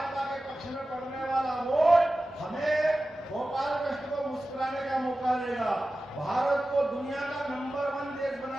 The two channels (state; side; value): normal; both; correlation 0.95